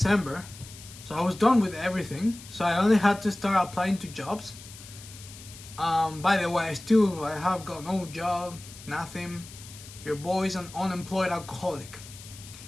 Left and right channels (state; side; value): noise; left; hiss, 17 dB below the sound